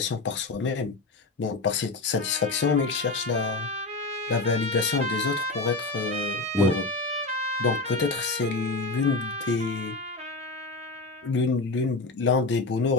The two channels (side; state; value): right; quieter; 3.4 dB